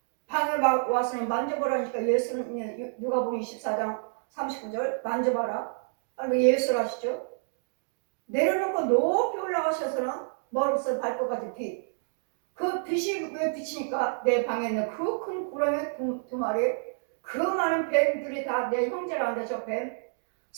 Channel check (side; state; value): left; silent; digital silence